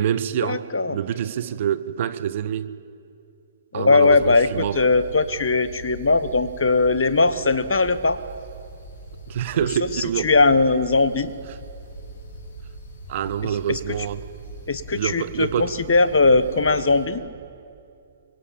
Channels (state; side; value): inverted; both; correlation -0.71